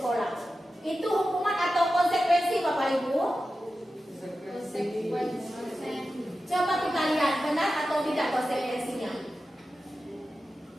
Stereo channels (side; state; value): both; normal; correlation 0.92